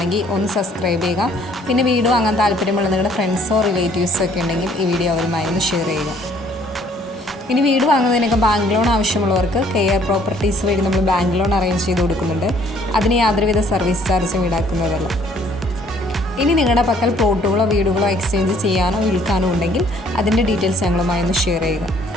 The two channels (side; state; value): both; normal; correlation 0.61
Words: ഒന്ന് സബ്സ്ക്രൈബ് ചെയ്യുക. പിന്നെ വീഡിയോ വാങ്ങാൻ താല്പര്യമുള്ള നിങ്ങളുടെ ഫ്രണ്ട്സോ റിലേറ്റീവ്സോ ഒക്കെ ഉണ്ടെങ്കിൽ ഈ വീഡിയോ അവരുമായി ഒന്ന് ഷെയർ ചെയ്യുക. ഇനി വീട് വാങ്ങുന്നതിനൊക്കെ ബാങ്ക് ലോൺ ആവശ്യമുള്ളവർക്ക് കെയർ പ്രോപ്പർട്ടീസ് വഴി നമ്മൾ ബാങ്ക് ലോൺ അറേഞ്ച് ചെയ്ത് കൊടുക്കുന്നുണ്ട്. അതിന് യാതൊരുവിധ സർവീസ് ചാർജും ഈടാക്കുന്നതല്ല. ഇനി നിങ്ങളുടെ പക്കൽ പ്ലോട്ടുകളോ വീടുകളോ എക്സ്ചേഞ്ച് ചെയ്യാനോ വിൽക്കാനോ ഉണ്ടെങ്കിൽ അതിൻ്റെ ഡീറ്റെയിൽസ് ഞങ്ങളുമായി ഒന്ന് ഷെയർ ചെയ്യുക.